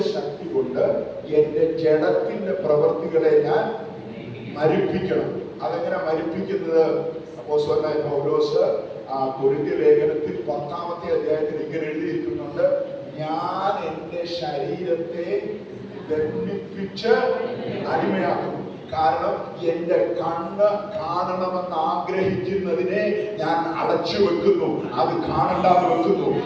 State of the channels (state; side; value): identical; both; correlation 1.00